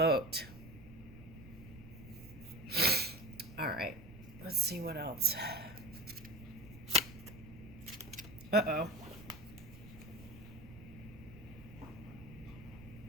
All right, let's see what else. Uh-oh.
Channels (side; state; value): right; noise; rumble, 16 dB below the sound